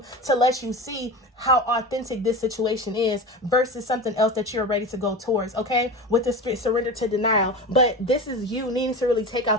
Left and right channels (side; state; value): both; normal; correlation 0.28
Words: to let you see how authentic this situation is versus something else that you're ready to go towards, okay? With the surrender to denial. But this is you needing to really take